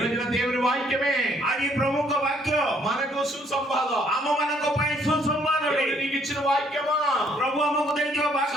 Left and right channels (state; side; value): normal; both; correlation 0.65